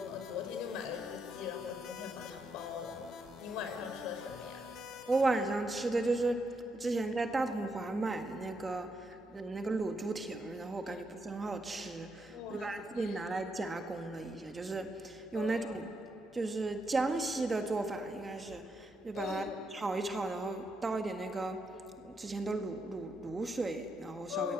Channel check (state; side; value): normal; both; correlation 0.80